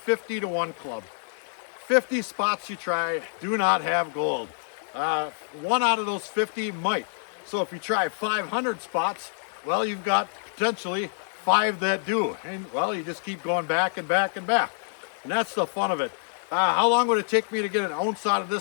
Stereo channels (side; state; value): right; silent; digital silence